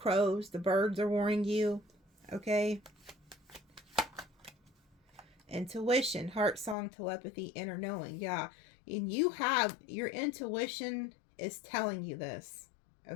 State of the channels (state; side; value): drops out; right; at 6.8 s